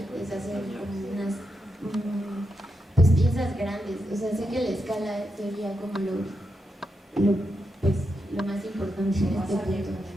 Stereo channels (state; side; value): normal; both; correlation 0.85